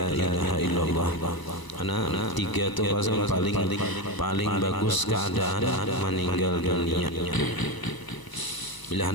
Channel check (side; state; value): right; late; 1.0 ms